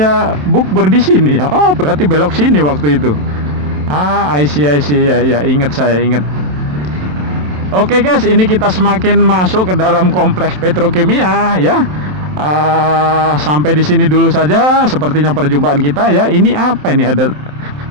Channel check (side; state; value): left; late; 27 ms